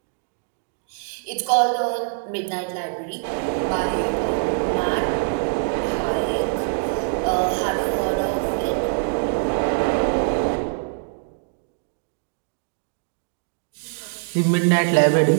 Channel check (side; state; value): left; silent; digital silence